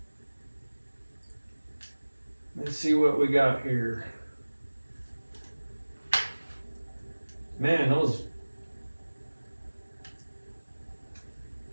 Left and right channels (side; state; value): both; inverted; correlation -1.00